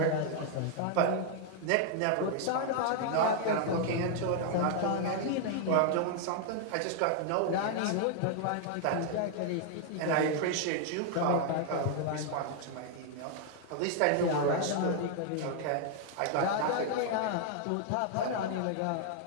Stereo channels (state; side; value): different; both; correlation 0.00